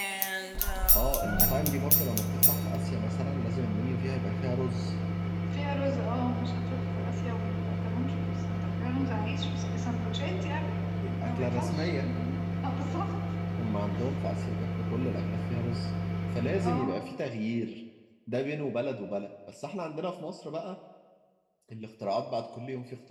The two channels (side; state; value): both; identical; correlation 1.00